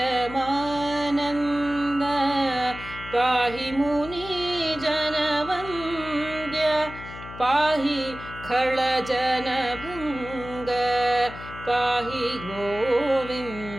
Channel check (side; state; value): left; noise; hum, 13 dB below the sound